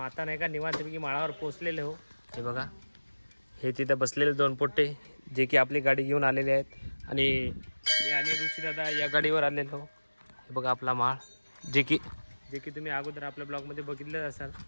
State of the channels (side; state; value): both; inverted; correlation -1.00